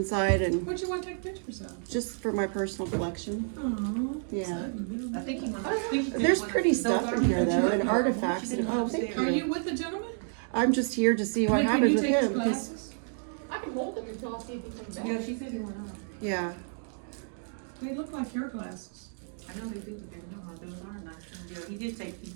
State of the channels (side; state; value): left; silent; 57 dB below the other